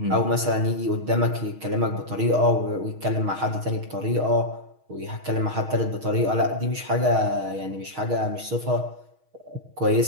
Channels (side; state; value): left; late; 6.4 ms